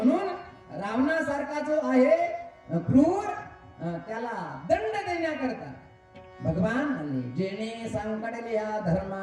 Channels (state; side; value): identical; both; correlation 1.00